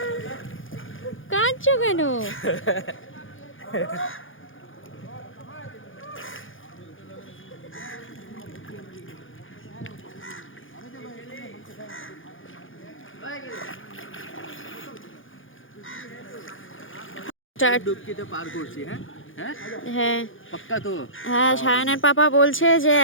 কাঁদছো কেন? ডুবকিতে পার করছি। হ্যাঁ হ্যাঁ হ্যাঁ পাক্কা তো? হ্যাঁ, সায়নের পাপা বলছে যে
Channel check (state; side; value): late; right; 0.58 ms